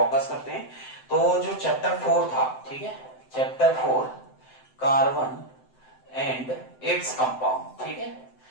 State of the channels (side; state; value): right; late; 7.8 ms